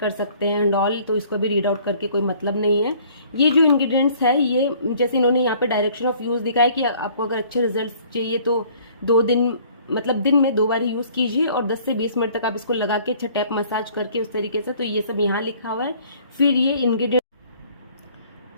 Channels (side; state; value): both; inverted; correlation -0.56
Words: सकते हैं एंड ऑल, तो इसको भी रीड आउट करके कोई मतलब नहीं है। ये जो इंग्रेडिएंट्स है, ये जैसे इन्होंने यहाँ पे डायरेक्शन ऑफ यूज़ दिखाया कि आपको अगर अच्छे रिजल्ट चाहिए तो 2 दिन मतलब दिन में 2 बार यूज़ कीजिए और 10 से 20 मिनट तक आप इसको लगा के अच्छा टैप मसाज करके उस तरीके से, तो ये सब यहाँ लिखा हुआ है। फिर ये इंग्रेडिएंट